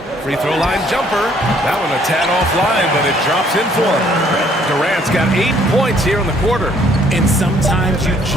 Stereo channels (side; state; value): both; normal; correlation 0.63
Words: Free throw line jumper. That one a tad offline, but it drops in for him. Durant's got 8 points here in the quarter. And sometimes you